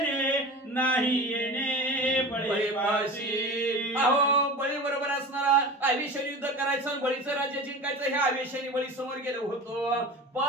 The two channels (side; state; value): both; normal; correlation 0.33